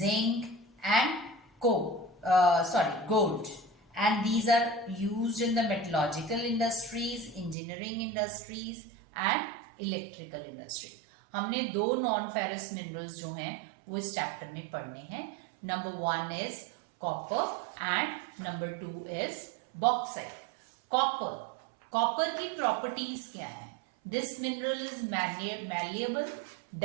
and gold. And these are used in the metallurgical industries, engineering industries, and electrical industries. हमने 2 non-ferrous minerals जो हैं वो इस chapter में पढ़ने हैं. Number 1 is copper and number 2 is bauxite. Copper की properties क्या है? This mineral is malleable,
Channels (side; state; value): left; drops out; at 7.6 s